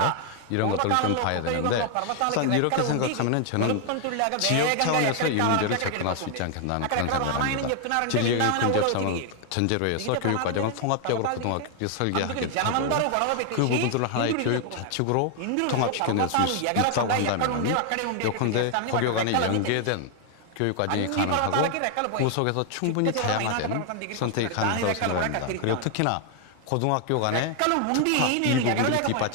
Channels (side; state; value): both; different; correlation 0.00